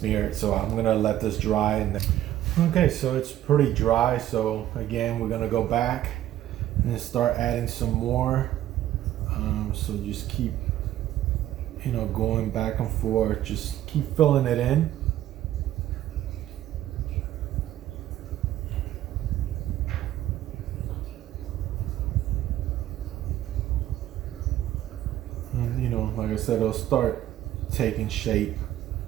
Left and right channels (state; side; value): quieter; left; 13.0 dB